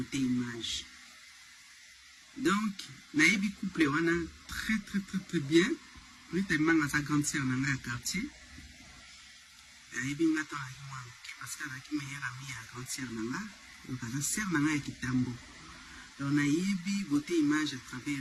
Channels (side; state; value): both; identical; correlation 1.00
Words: image. Donc, naïbi couple wana très bien. Rita Kimanga sa grande sœur dans le quartier. Naïbi ngata wa parce que la meilleure amie à grande sœur nanga, donc la sœur nanga ya kitambo. Donc naïbi beauté image à